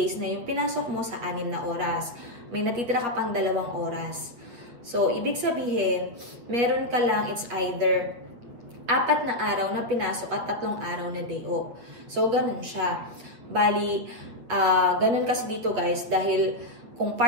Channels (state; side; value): late; left; 8.6 ms